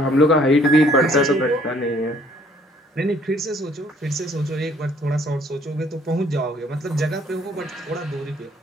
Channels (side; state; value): both; normal; correlation 0.61